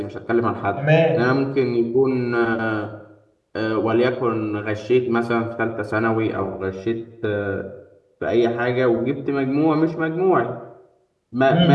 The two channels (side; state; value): both; identical; correlation 1.00